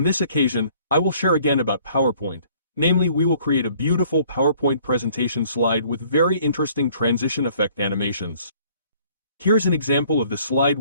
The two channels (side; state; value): both; inverted; correlation -0.58